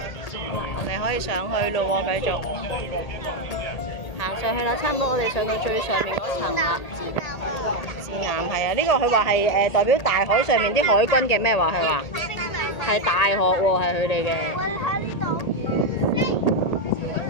我哋可以上去咯喎，繼續行上去啦，差唔多我哋上到最上面嗰層啦。指南係啊，呢個佢話係代表大海上面啲海軍嘅咩話？佢話係大學喎，係佢哋嘅。我喺呢度跌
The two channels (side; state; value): right; late; 1.8 ms